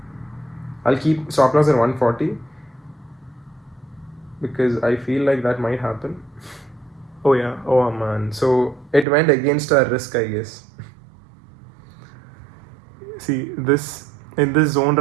I'll keep stop loss at 140 because I feel like that might happen. Oh yeah, oh man. So it went against our risk, I guess. See, this in this zone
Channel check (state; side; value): drops out; left; at 9.1 s